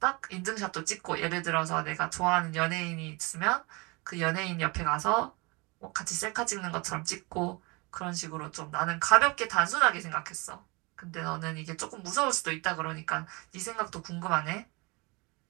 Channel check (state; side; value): quieter; left; 27.0 dB